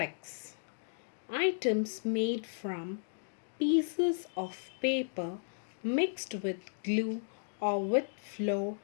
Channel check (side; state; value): right; silent; digital silence